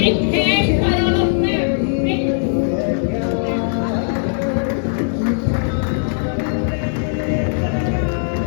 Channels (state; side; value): silent; right; 67 dB below the other